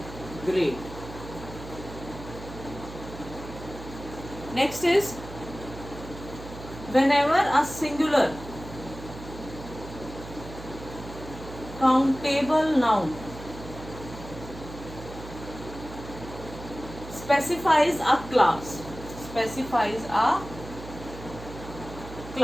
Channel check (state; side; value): noise; right; hum, 13 dB below the sound